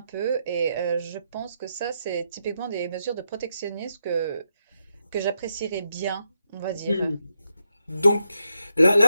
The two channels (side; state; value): both; inverted; correlation -0.82